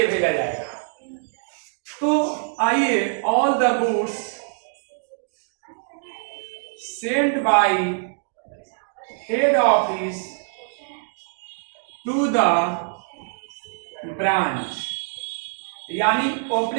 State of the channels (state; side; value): silent; left; digital silence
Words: भेजा जाएगा। तो आइए, all the goods sent by head office to the branch, यानी